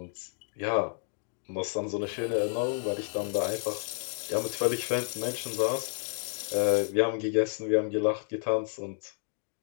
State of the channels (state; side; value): silent; right; digital silence